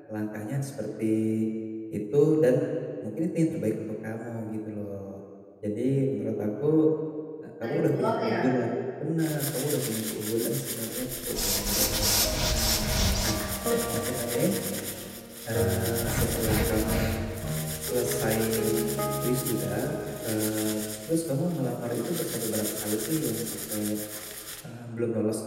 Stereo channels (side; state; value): both; identical; correlation 1.00